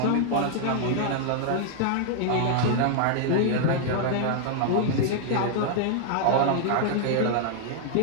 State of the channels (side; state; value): both; different; correlation 0.00